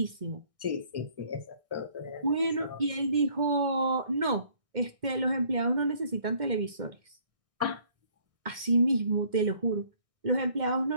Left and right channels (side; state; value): left; late; 2.1 ms